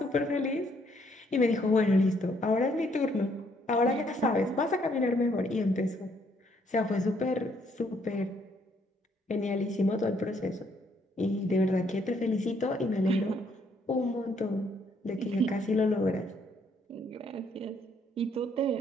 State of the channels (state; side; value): normal; both; correlation 0.69